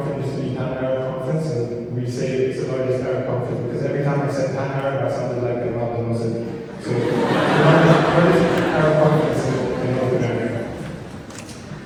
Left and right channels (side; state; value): both; identical; correlation 1.00